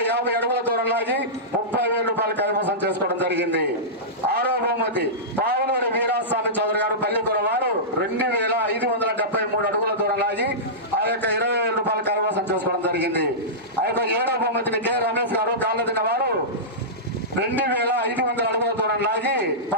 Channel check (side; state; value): both; normal; correlation -0.16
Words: అడుగుల దూరం లాగి 30,000 రూపాయలు కైవసం చేసుకోవడం జరిగింది. ఆరో బహుమతి పావులూరి వీరాస్వామి చౌదరి గారు పల్లికూర వారు 2,573 అడుగుల దూరం లాగి ఆ యొక్క 20,000 రూపాయలు కైవసం చేసుకోవడం జరిగింది. ఆ యొక్క ఏడో బహుమతిని కె రమేష్ గారు కాళ్ళదిన వారు 2,500 అడుగుల దూరం లాగి